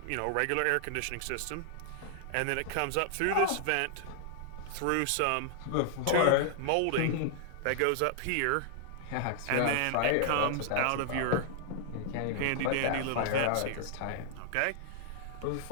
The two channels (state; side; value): different; both; correlation -0.01